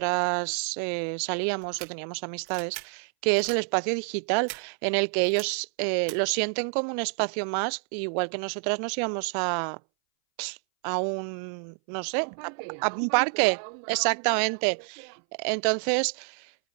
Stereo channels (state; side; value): silent; left; 59 dB below the other